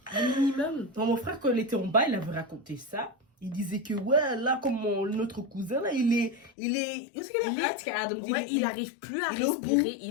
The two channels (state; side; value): drops out; right; at 6.5 s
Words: Un minimum. Non, mon frère, quand il était en bas, il avait raconté ça. Il disait que, ouais, là, comme notre cousin, là, il est... Où est-ce qu'il est Adam dit, Ouais, il n'arrive plus à il est au bout. respirer.